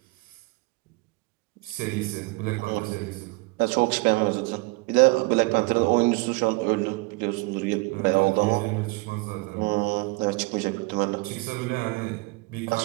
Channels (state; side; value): quieter; left; 25.3 dB